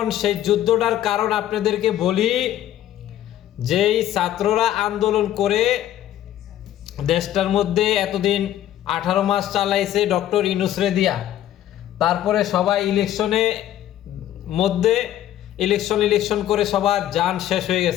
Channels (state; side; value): quieter; right; 12.5 dB